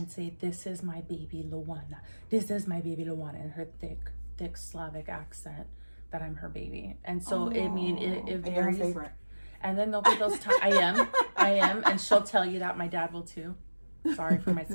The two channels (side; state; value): both; inverted; correlation -1.00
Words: say, this is my baby Luana. This is my baby Luana, in her thick Slavic accent, that I'm her baby. And so, I mean, it varies. And you're her favorite. And then there'll be those times, I am, and she'll tell you that. My dad will too. Sorry for my